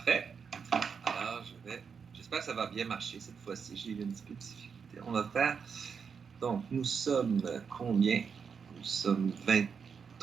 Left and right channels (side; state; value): left; quieter; 6.2 dB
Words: Alors, j'espère que ça va bien marcher cette fois-ci. J'ai eu un petit peu de difficulté. On va faire... Donc, nous sommes combien? Nous sommes